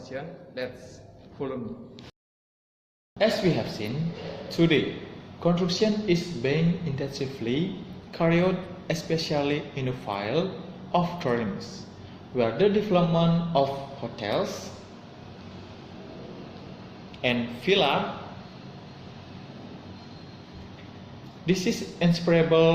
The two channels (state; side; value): identical; both; correlation 1.00